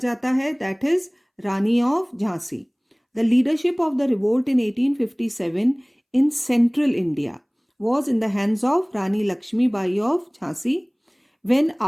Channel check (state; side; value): identical; both; correlation 1.00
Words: है, that is Rani of Jhansi. The leadership of the revolt in 1857 in central India was in the hands of Rani Lakshmi Bai of Jhansi, when